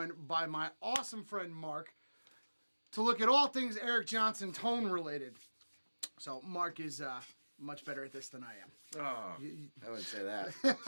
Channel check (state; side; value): inverted; both; correlation -1.00